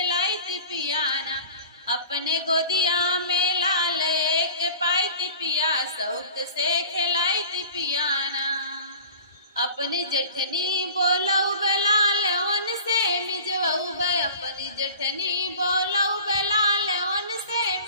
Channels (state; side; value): inverted; both; correlation -0.42